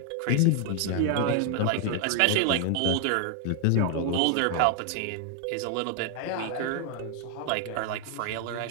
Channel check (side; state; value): both; different; correlation 0.00